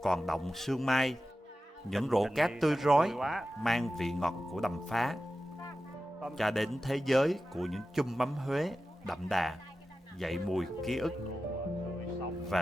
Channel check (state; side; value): normal; both; correlation 0.93